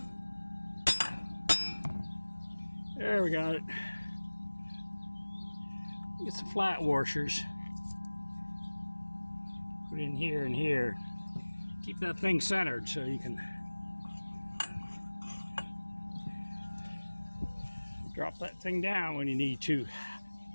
there we got it. Get some flat washers. Put in here and here. Keep that thing centered so you can drop that thing down when you need to.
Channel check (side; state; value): both; inverted; correlation -1.00